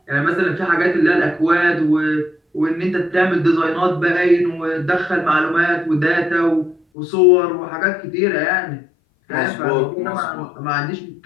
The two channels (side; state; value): right; drops out; at 6.8 s